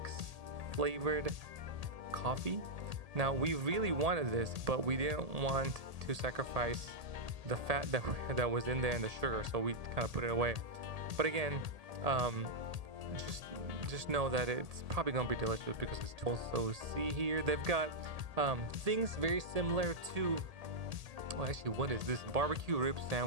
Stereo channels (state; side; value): late; left; 1.8 ms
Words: flavored coffee. Now we really wanted this, but we didn't want to sacrifice the fat that was in there and the sugar, so we kind of put it away. But again, just know that it's probably gonna be delicious because it's also, see here they've got things very similar to, well, actually, what is this? Barbecue rib